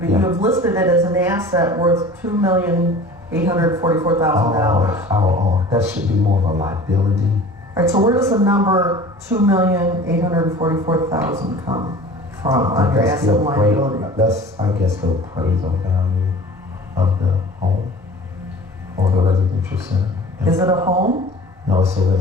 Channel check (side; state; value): both; normal; correlation 0.42